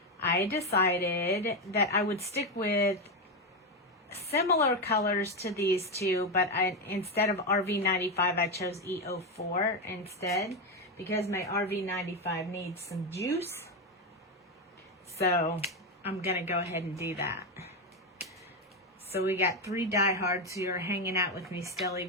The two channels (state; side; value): normal; both; correlation 0.09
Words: I decided that I would stick with similar colors to these two, but instead of RV95, I chose E04 instead because my RV95 needs some juice. So I'm going to go ahead and do that. So we got 3 diehards who are hanging out with me still,